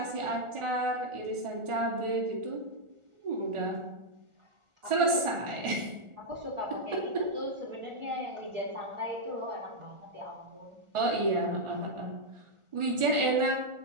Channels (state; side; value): late; left; 1.4 ms